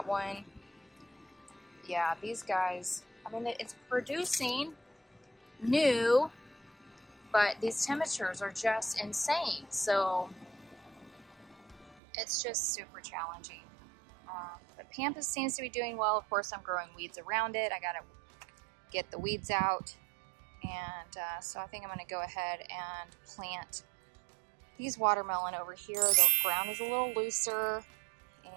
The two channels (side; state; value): left; drops out; at 12.0 s